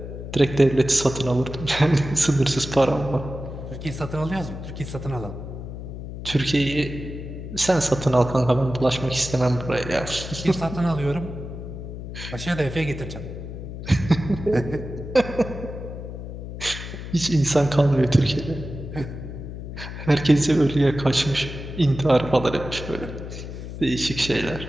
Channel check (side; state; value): left; noise; hum, 9 dB below the sound